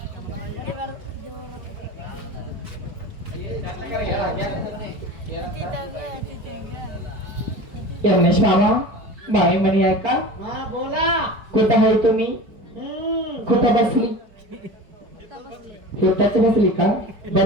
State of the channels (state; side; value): late; left; 4.9 ms